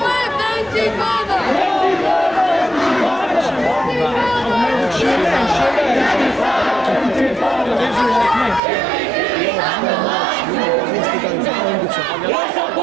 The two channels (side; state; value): left; drops out; at 8.6 s